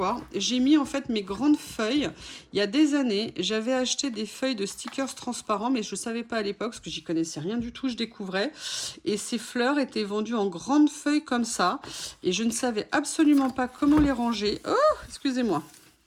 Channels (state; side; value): identical; both; correlation 1.00